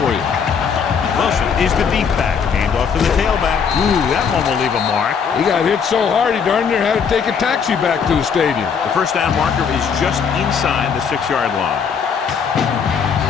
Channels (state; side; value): quieter; right; 6.5 dB